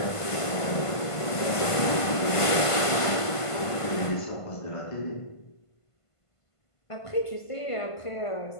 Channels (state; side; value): late; right; 1.5 ms